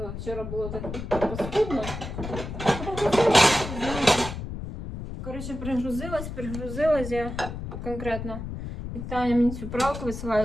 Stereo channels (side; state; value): left; noise; rumble, 8 dB below the sound